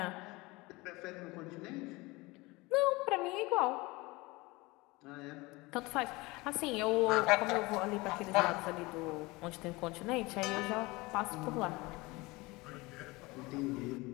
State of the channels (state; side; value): quieter; right; 22.9 dB